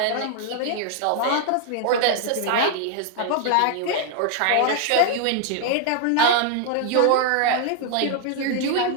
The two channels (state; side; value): different; both; correlation 0.00